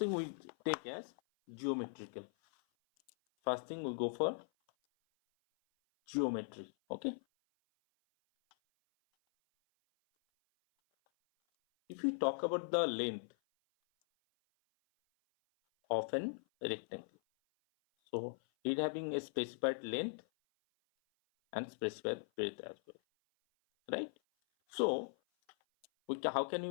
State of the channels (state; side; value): silent; right; 51 dB below the other